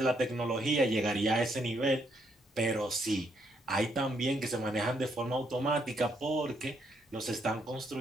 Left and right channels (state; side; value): normal; both; correlation 0.74